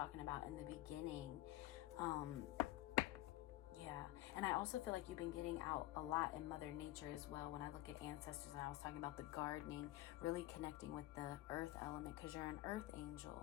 about in the beginning. Yeah. And I also feel like you've been getting out a lot in Mother Nature as well. When I look at ancestors, and I was talking about the gardening, really connecting with the earth element, because you're an earth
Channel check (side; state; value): right; quieter; 16.0 dB